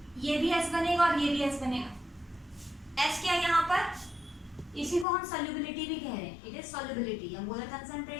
ये भी S बनेगा और ये भी S बनेगा। S क्या है यहाँ पर, इसी को हम सॉल्युबिलिटी भी कह रहे हैं, इट इज सॉल्युबिलिटी या मोलर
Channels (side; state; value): right; drops out; at 5.1 s